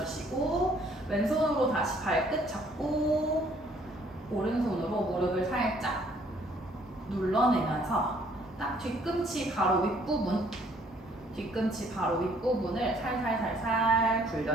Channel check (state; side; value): normal; both; correlation 0.62